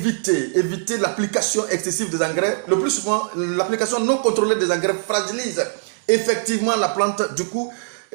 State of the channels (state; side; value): silent; left; digital silence